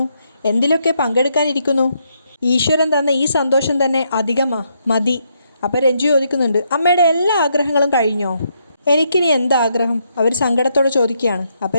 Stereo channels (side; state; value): both; inverted; correlation -0.77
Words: എന്തിലൊക്കെ പങ്കെടുക്കാനിരിക്കുന്നു. ഈശ്വരൻ തന്ന ഈ സന്തോഷം തന്നെ മതി. അപ്പോൾ രഞ്ജു ചോദിക്കുന്നുണ്ട്, അമ്മയുടെ എല്ലാ ആഗ്രഹങ്ങളും കഴിഞ്ഞോ? എനിക്കിനി എന്താഗ്രഹം? അവർ സങ്കടത്തോടെ ചോദിക്കുകയാണ്. അപ്പോൾ